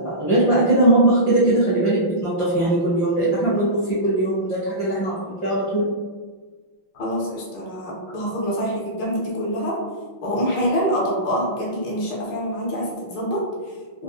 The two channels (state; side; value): late; right; 5.9 ms